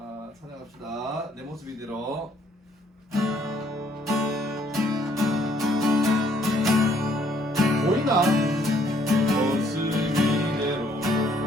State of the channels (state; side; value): normal; both; correlation 0.66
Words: 찬양합시다. 내 모습 이대로. 보이나? 모습 이대로